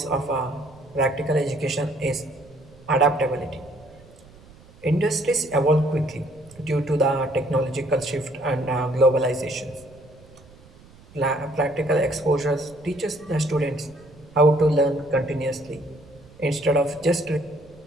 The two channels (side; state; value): right; noise; rumble, 24 dB below the sound